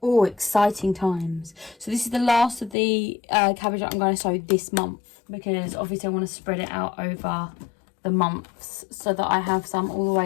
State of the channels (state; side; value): drops out; right; at 2.8 s